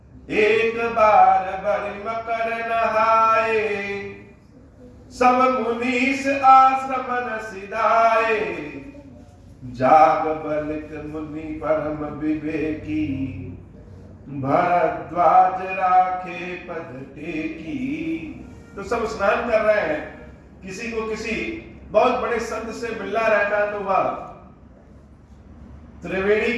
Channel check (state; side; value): identical; both; correlation 1.00